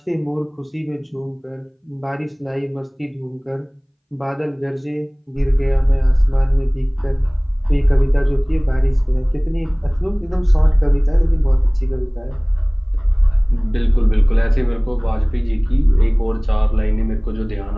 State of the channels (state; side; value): identical; both; correlation 1.00